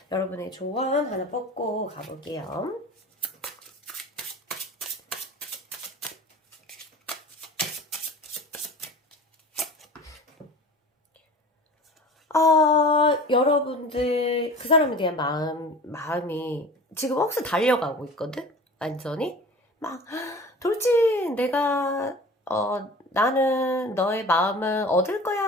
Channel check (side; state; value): both; normal; correlation 0.39